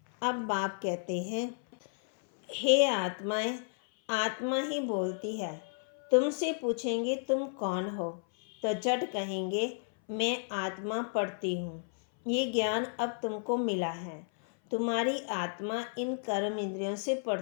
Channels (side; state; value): right; silent; 56 dB below the other